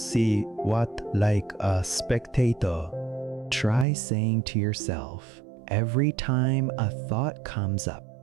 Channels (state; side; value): drops out; left; at 3.9 s